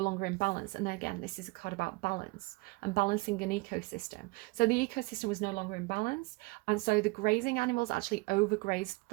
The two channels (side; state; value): left; quieter; 25.3 dB